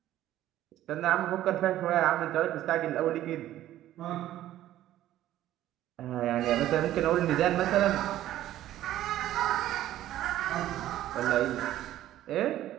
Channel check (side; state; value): left; quieter; 13.4 dB